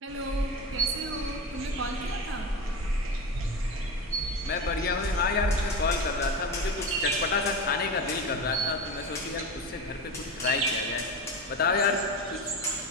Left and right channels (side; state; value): both; normal; correlation 0.23